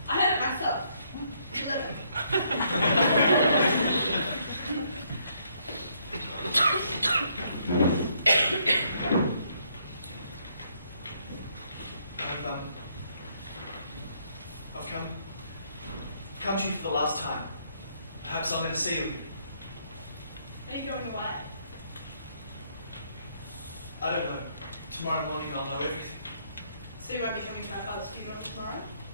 I heard it myself. 11. I've come to you for the last time. Perhaps I'm going to see you. Are you going away? I don't know. Tomorrow morning I'll know everything. So you won't be coming to my father's funeral tomorrow?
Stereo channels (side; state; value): both; inverted; correlation -0.70